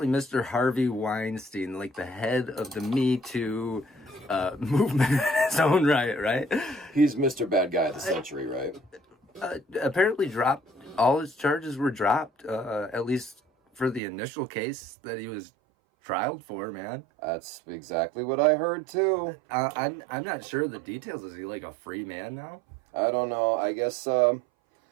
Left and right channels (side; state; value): left; drops out; at 14.0 s